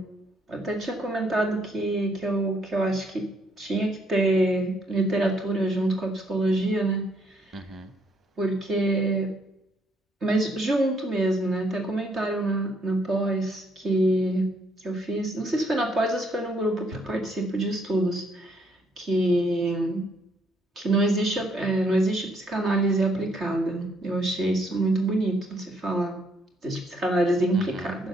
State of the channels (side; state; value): both; normal; correlation 0.70